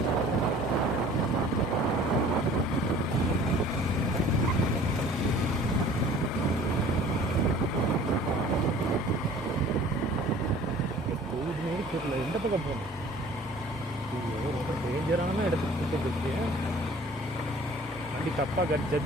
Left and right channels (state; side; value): normal; both; correlation 0.49